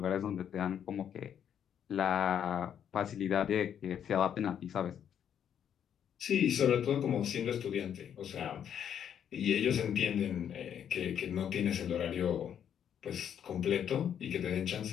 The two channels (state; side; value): quieter; right; 9.0 dB